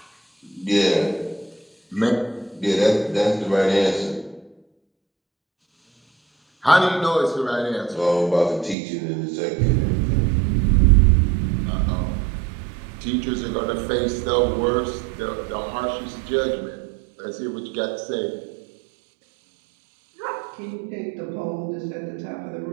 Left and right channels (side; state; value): left; drops out; at 8.8 s